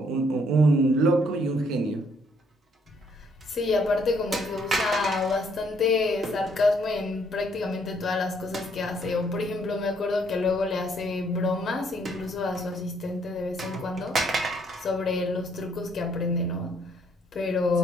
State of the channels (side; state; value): both; normal; correlation 0.68